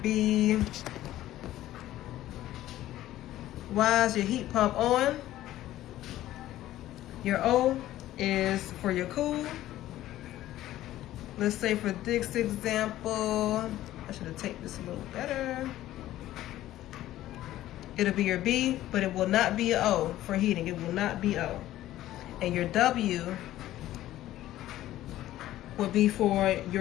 be, Y is your heat pump on. Your O is for your cool. Let's say for this example, I should have taken this a little better. It'll be your B, but it will not be an O for heating. It will not be O. And your W will be for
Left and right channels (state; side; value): quieter; right; 14.3 dB